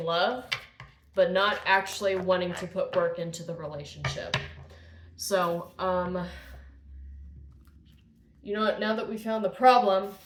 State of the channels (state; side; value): identical; both; correlation 1.00